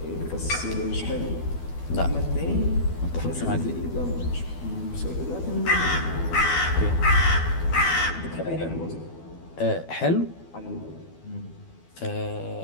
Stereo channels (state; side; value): late; right; 12 ms